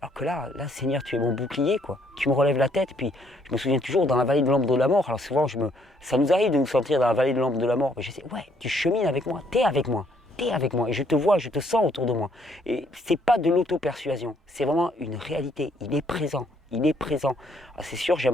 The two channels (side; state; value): both; normal; correlation 0.68